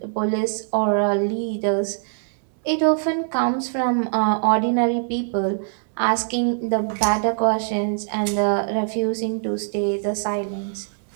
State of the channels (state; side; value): silent; left; digital silence